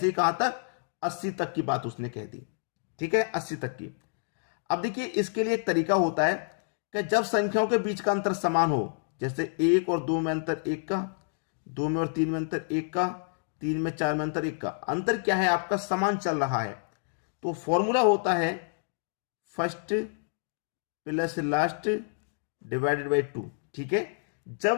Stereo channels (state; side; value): silent; right; digital silence